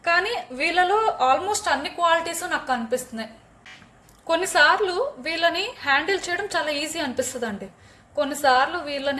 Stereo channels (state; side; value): identical; both; correlation 1.00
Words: కానీ వీళ్ళలో ఆల్మోస్ట్ అన్ని క్వాలిటీస్ నాకు కనిపిస్తున్నాయి. కొన్నిసార్లు వీళ్ళని హ్యాండిల్ చేయడం చాలా ఈజీ అనిపిస్తుంది అండి, కొన్నిసార్లు